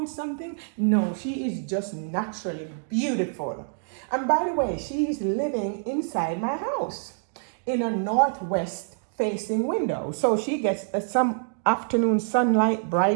something? No, she is just naturally beautiful. And by the way, she is living inside my house in a northwest facing window. So she gets some afternoon sunlight,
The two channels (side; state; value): left; silent; digital silence